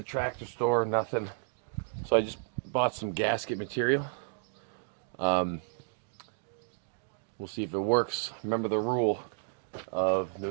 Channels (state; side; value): silent; left; digital silence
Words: tractor store, nothing. So I just bought some gasket material. We'll see if it works. Remember the rule of